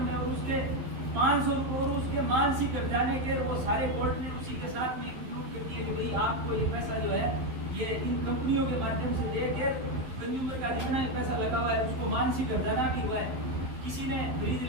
और उसके 500 रुपए और उसके मानसिक हर्जाने के वो सारे कोर्ट ने उसी के साथ में इंक्लूड कर दिए कि भाई आपको ये पैसा जो है ये इन कंपनियों के माध्यम से देकर कंज्यूमर का जितना भी पैसा लगा हुआ है उसको मानसिक हर्जाना भी हुआ है। किसी ने फ्रिज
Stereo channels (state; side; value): late; left; 12 ms